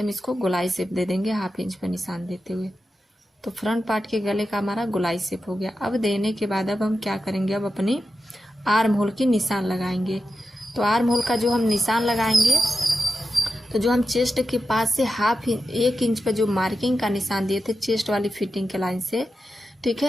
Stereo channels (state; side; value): normal; both; correlation 0.90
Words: हम इसको गोलाई शेप दे देंगे 1/2 इंच पे निशान देते हुए। तो फ्रंट पार्ट के गले का हमारा गोलाई शेप हो गया। अब देने के बाद अब हम क्या करेंगे, अब अपनी आर्म होल की निशान लगाएंगे। तो आर्म होल का जो हम निशान लगाएंगे, तो जो हम चेस्ट के पास से 1 इंच पे जो मार्किंग का निशान दिए थे चेस्ट वाली फिटिंग के लाइन से, ठीक